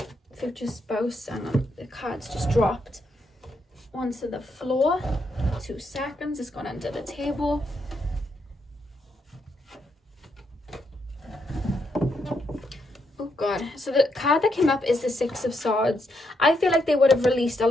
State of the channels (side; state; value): both; normal; correlation 0.79